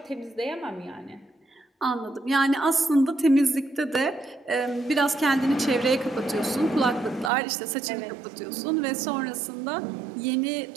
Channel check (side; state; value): left; drops out; at 7.3 s